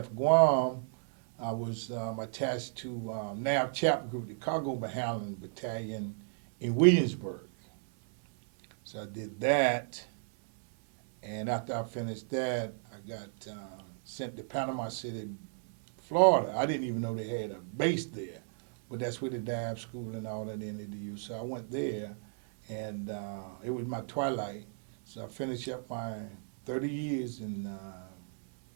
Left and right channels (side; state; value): left; silent; 55 dB below the other